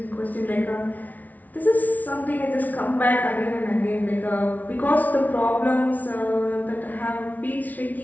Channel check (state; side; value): late; right; 0.076 ms